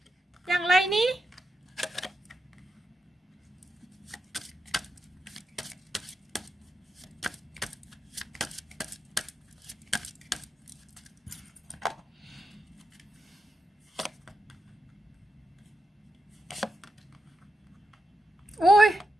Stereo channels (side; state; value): both; normal; correlation 0.86